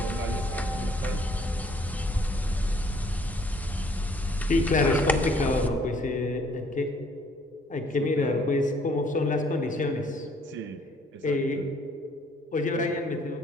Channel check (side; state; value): both; normal; correlation 0.62